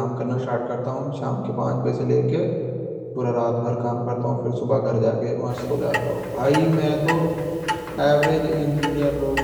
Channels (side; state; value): both; identical; correlation 1.00